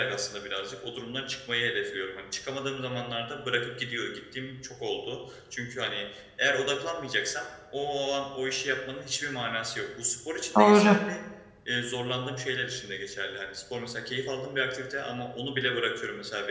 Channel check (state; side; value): identical; both; correlation 1.00